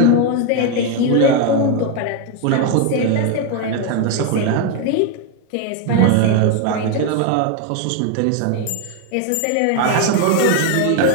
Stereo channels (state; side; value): different; both; correlation 0.01